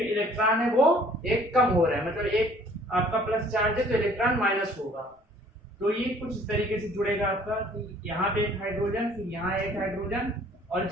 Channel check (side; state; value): both; normal; correlation 0.55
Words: इलेक्ट्रॉन है वो एक कम हो रहा है, मतलब एक आपका प्लस चार्ज है तो इलेक्ट्रॉन माइनस होगा। तो ये कुछ इस तरीके से जुड़ेगा आपका कि यहाँ पे एक हाइड्रोजन, फिर यहाँ एक हाइड्रोजन, और